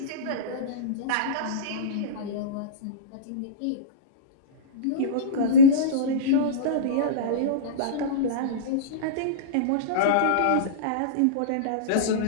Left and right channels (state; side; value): different; both; correlation -0.06